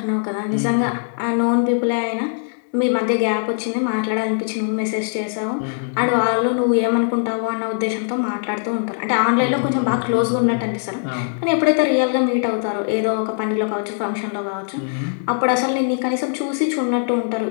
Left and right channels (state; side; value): silent; right; 65 dB below the other